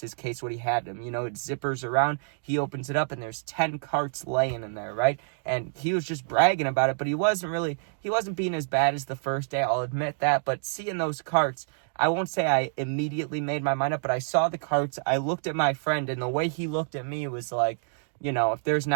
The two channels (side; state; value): left; silent; 60 dB below the other